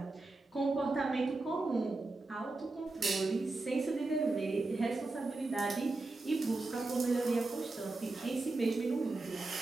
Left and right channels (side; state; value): left; quieter; 3.3 dB